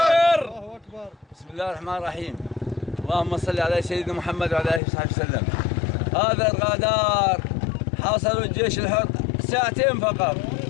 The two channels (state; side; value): drops out; right; at 4.8 s